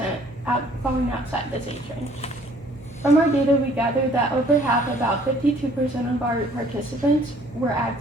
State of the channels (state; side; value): normal; both; correlation 0.58